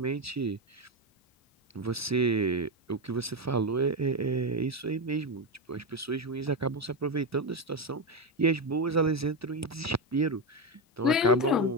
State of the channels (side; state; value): both; normal; correlation 0.11